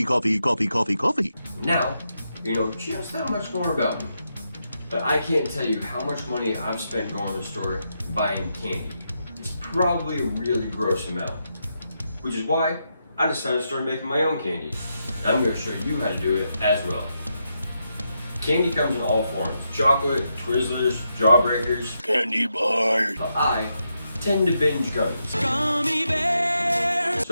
Coffee. Now, you know just that much more about me. But I can't tell you how much money I've spent going to the store buying candy. It's probably a really gross amount. Which is why I decided to start making my own candy. And I'm going to show you how to do it as well. Candy comes in all forms. Chocolate, Twizzlers, Jawbreakers, Candy bars. but I tend to binge gummies. Gummy bears.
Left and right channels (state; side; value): inverted; both; correlation -0.83